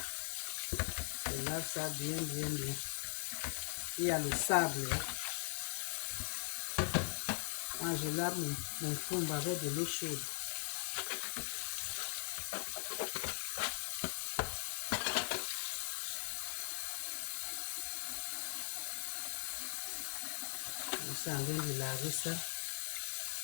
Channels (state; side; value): silent; right; 51 dB below the other